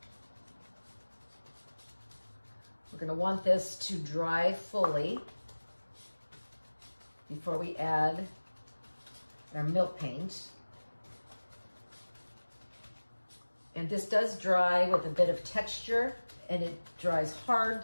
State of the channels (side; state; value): both; inverted; correlation -1.00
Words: We're going to want this to dry fully before we add our milk paint. And this does dry with a bit of texture, and it dries